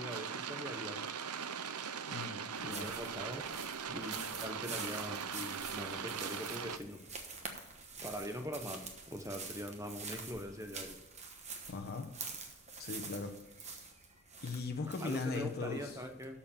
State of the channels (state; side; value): normal; both; correlation 0.33